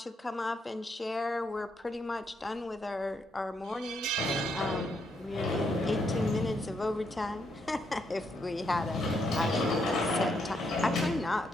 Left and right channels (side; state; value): both; normal; correlation 0.77